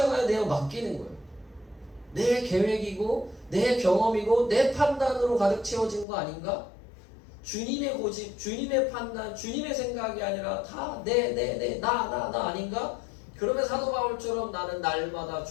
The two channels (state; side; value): drops out; right; at 6.1 s